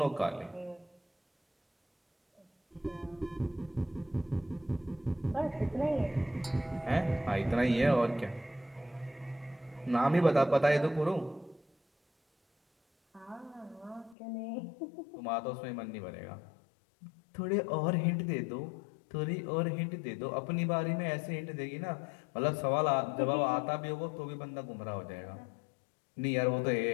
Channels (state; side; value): drops out; right; at 14.2 s